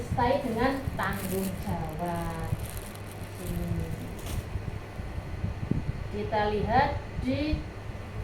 dengan tanggung jawab. Kita lihat di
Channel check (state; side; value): identical; both; correlation 1.00